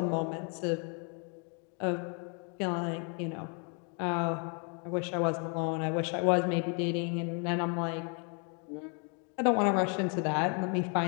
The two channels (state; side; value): quieter; right; 38.2 dB